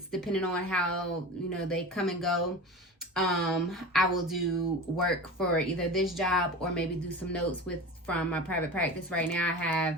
depending on how, they come and go, I will do work for either this job or maybe do some notes from my private practice. Right now I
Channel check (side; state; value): both; normal; correlation 0.31